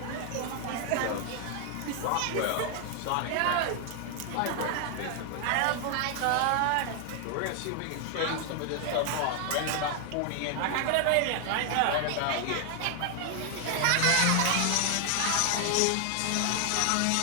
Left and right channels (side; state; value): both; different; correlation 0.00